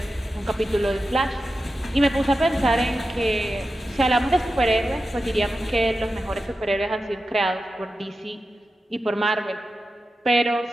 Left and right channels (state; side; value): normal; both; correlation 0.92